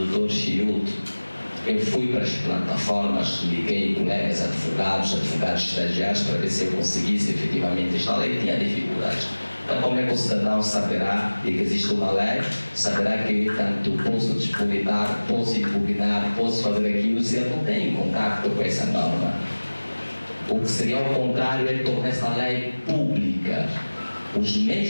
Dr. Chiuto. Eu fui para as plataformas, liguei colegas advogados estagiários, para ver se eu conseguisse efetivamente instalar, e tinha dificuldades. Então, como é que o cidadão saberá de que existe uma lei, saberá que tanto posso disputar, posso impugnar, posso fazer aquilo, se eu não tenho contato com essa norma? O que seria ao contrário é tornar essa lei pública. Os meios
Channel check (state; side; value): inverted; both; correlation -1.00